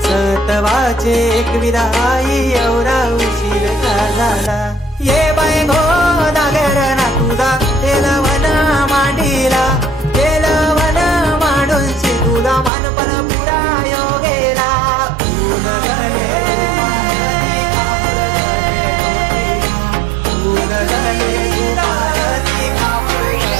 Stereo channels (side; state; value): left; drops out; at 12.7 s